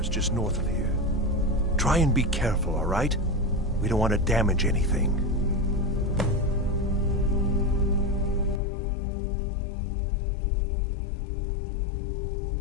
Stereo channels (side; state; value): right; drops out; at 8.6 s